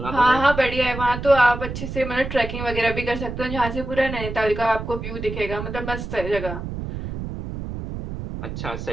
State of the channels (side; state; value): right; noise; rumble, 7 dB below the sound